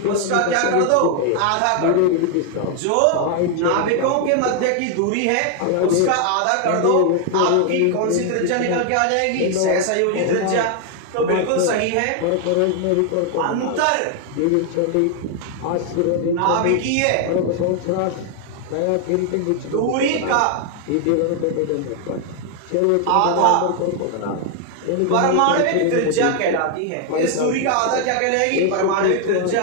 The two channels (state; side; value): different; both; correlation 0.00